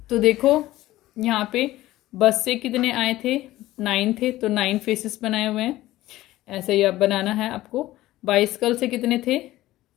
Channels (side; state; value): right; quieter; 16.1 dB